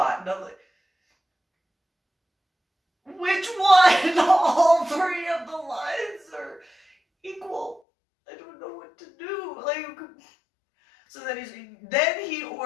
And I'm like, which one? All three of the lines are equal. I don't know what to do. Like, so then he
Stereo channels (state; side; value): drops out; right; at 7.8 s